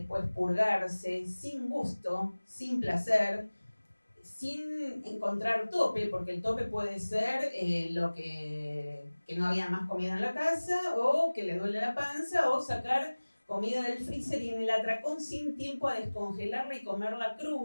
purgarse, sin gusto, sin placer, sin encontrar tope, porque el tope puede ser que no había más comida en la casa, o que le duele la panza, o sacar comida del freezer y en el atracón sin tiempo a descongelarla y comerla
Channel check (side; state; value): both; inverted; correlation -1.00